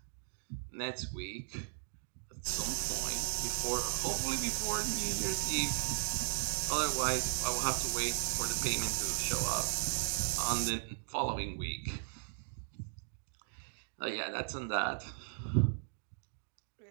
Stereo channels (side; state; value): left; silent; digital silence